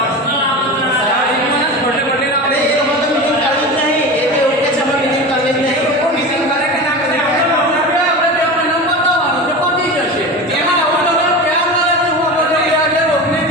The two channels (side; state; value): both; normal; correlation 0.28